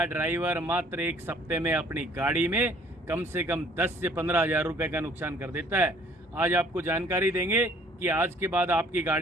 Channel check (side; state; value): both; normal; correlation 0.57